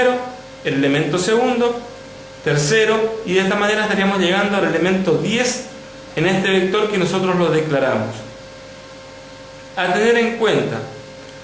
el elemento segundo, tercero, y de esta manera estaríamos llegando al elemento 10 en este vector que nosotros lo declaramos. A tener en cuenta,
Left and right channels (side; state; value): both; identical; correlation 1.00